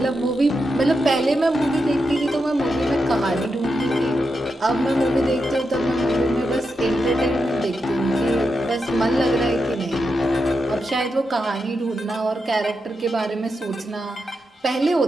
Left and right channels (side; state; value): both; normal; correlation 0.86